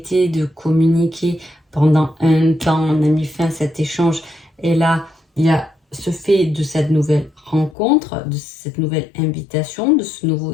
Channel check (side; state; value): right; drops out; at 7.8 s